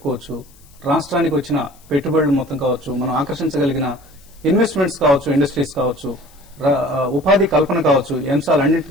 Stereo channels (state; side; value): noise; left; hiss, 28 dB below the sound